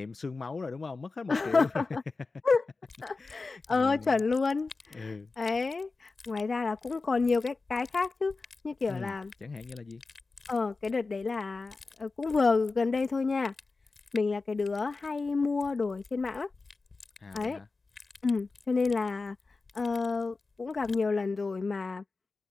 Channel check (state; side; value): quieter; right; 3.9 dB